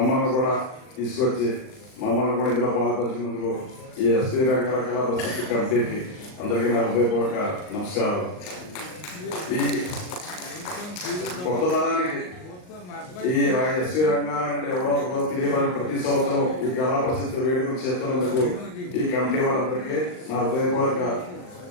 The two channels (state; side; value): late; right; 39 ms